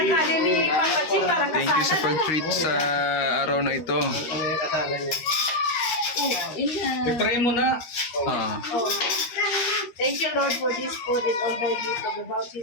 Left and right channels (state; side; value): late; right; 13 ms